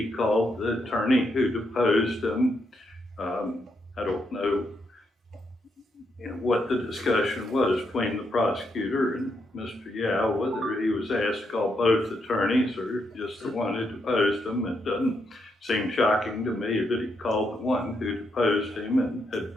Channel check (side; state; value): both; normal; correlation 0.79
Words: called the attorney who deposed him. I don't know, what the discussion was between the prosecutor and Mr. Yao, whether he was asked to call both attorneys or just the one who deposed him. It doesn't seem shocking to me that he called the one who deposed him and had